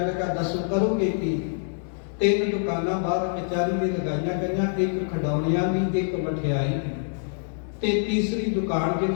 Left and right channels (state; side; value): silent; right; digital silence